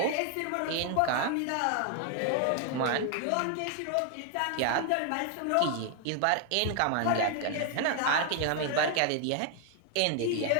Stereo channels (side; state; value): both; different; correlation 0.00